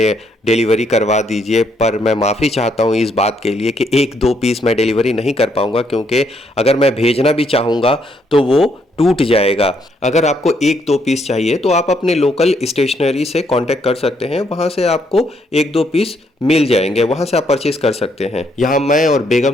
डिलीवरी करवा दीजिए, पर मैं माफ़ी चाहता हूँ इस बात के लिए कि 1-2 पीस मैं डिलीवरी नहीं कर पाऊँगा, क्योंकि अगर मैं भेजना भी चाहूँगा तो वो टूट जाएगा। अगर आपको 1-2 पीस चाहिए तो आप अपने लोकल स्टेशनरी से कांटेक्ट कर सकते हैं, वहाँ से आपको 1-2 पीस मिल जाएंगे, वहाँ से आप परचेज कर सकते हैं। यहाँ मैं और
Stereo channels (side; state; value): both; normal; correlation 0.73